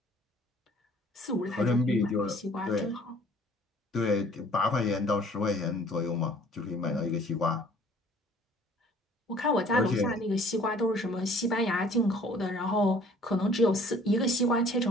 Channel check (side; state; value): both; normal; correlation 0.55